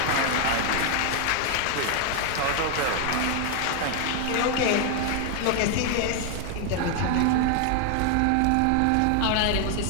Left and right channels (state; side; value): different; both; correlation 0.00